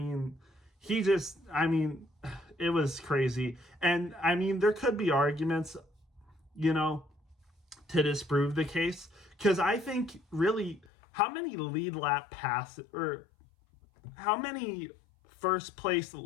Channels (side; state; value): right; drops out; at 10.9 s